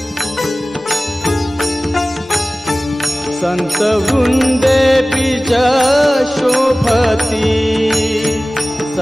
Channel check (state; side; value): normal; both; correlation 0.97